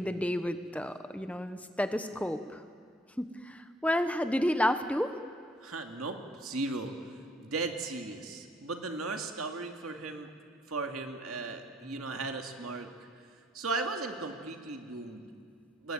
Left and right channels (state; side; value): normal; both; correlation 0.66